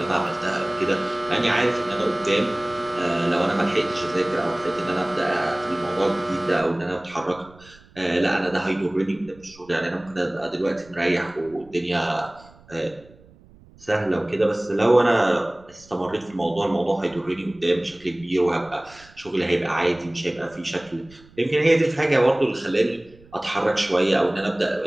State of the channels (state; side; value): noise; right; rumble, 25 dB below the sound